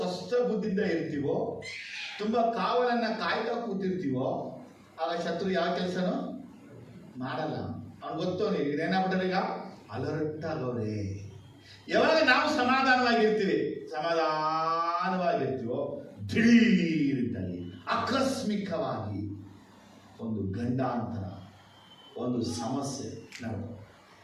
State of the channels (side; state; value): both; identical; correlation 1.00